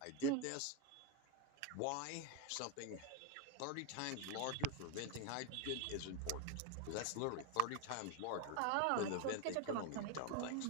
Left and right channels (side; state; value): both; different; correlation 0.02